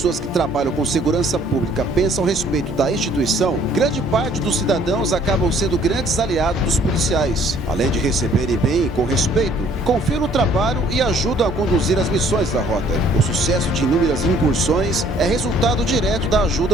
que trabalham com segurança pública pensam a respeito da instituição, grande parte dos cidadãos acabam sendo grandes aliados dos policiais. Além de receberem bem e com respeito, confiam no trabalho e ajudam a conduzir as missões da rota. O sucesso de inúmeras incursões é resultado direto da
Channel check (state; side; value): normal; both; correlation 0.59